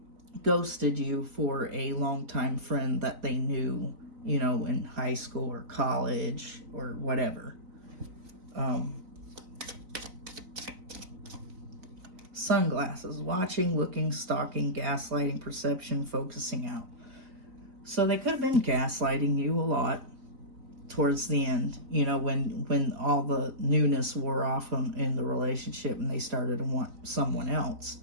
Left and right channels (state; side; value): late; left; 4.0 ms